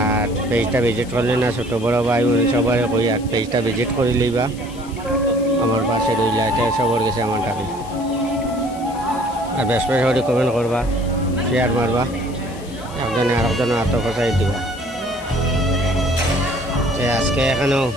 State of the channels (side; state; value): left; noise; hiss, 21 dB below the sound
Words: আর পেজটা ভিজিট করলে না ছোটো বড় ভাই বোন সবাই কই আর পেজটা ভিজিট করে লইবা, আমার পাশে রইলা, এটা সবার গেছে আমার টাকা। আর বেশ বেশ করে কমেন্ট করবা, শেয়ার মারবা, একজনে আরেকজনের আত্মপ্রচার দিবা। আজকে এখানেও